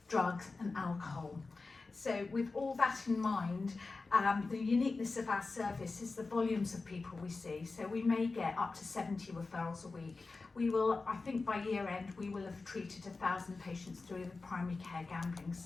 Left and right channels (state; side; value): quieter; right; 3.8 dB